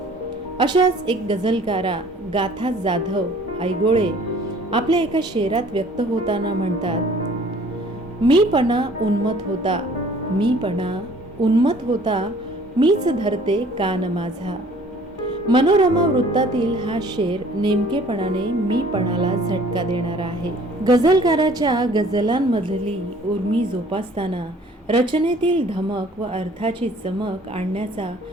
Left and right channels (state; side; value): normal; both; correlation 0.53